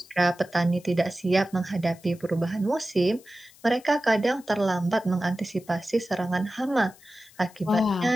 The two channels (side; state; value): left; noise; hiss, 25 dB below the sound